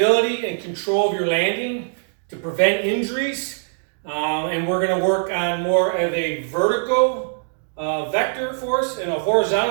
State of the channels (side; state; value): left; silent; digital silence